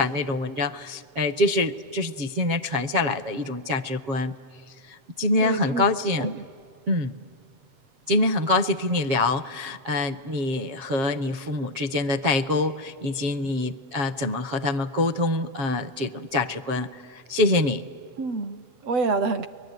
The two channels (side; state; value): left; late; 7.4 ms